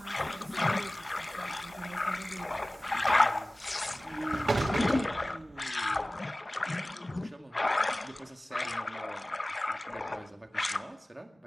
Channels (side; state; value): both; normal; correlation 0.98